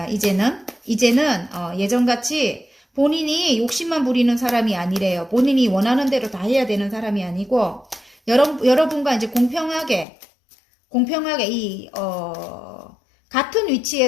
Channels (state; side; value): drops out; right; at 10.1 s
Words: 이제는 예전같이 본인이 욕심만 부리는 사람이 아니래요. 본인이 원하는 대로 다 해야 되는 사람이 아니고 여러분과 이제 공평하게 같은